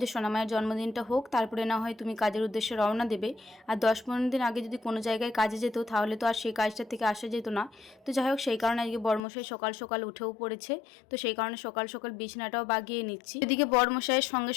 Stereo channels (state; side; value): drops out; right; at 9.2 s